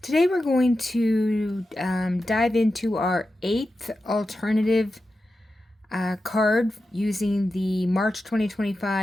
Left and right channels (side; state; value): both; normal; correlation 0.91